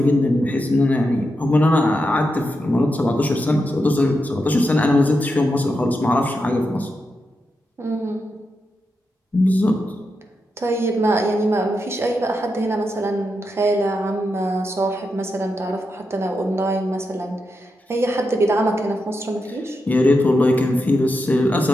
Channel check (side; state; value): both; normal; correlation 0.86